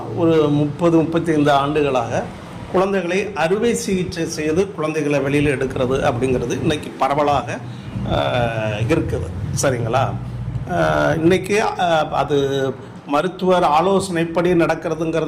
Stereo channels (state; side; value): identical; both; correlation 1.00